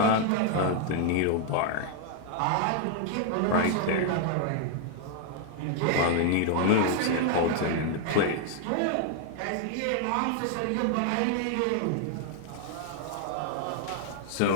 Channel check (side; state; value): both; different; correlation 0.00